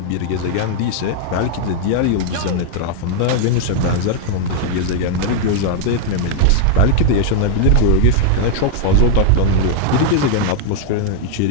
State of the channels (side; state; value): both; different; correlation 0.00